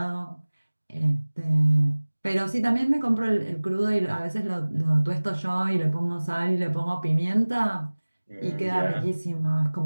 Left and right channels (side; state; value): both; inverted; correlation -1.00